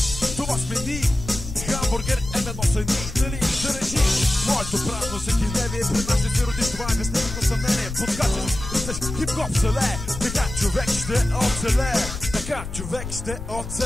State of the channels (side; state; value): left; noise; rumble, 8 dB below the sound